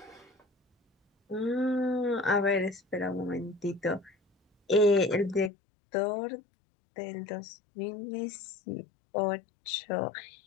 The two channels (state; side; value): drops out; right; at 5.5 s